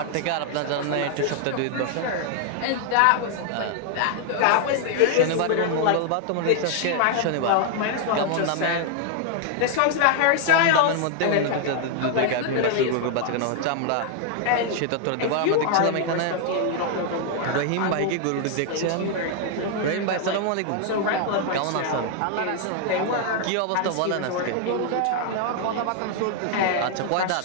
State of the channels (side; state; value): both; different; correlation 0.00